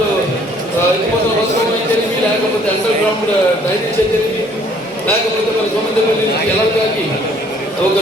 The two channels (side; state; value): both; normal; correlation 0.60